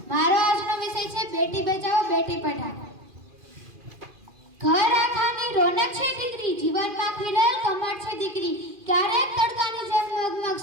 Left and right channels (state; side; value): late; left; 2.4 ms